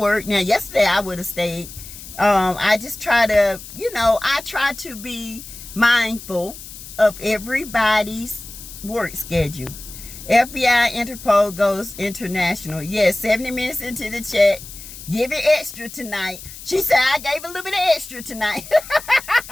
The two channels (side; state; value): left; noise; hiss, 14 dB below the sound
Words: Now, yesterday I would have stayed. I just try to, I try to be mindful of everybody's work schedule. FBI Interpol goes international. Yes, 70 minutes into the chat. Give it extra tonight. She said, I gave a little bit of extra tonight.